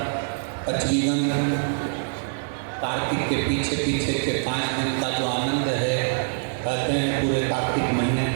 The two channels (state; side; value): silent; left; 62 dB below the other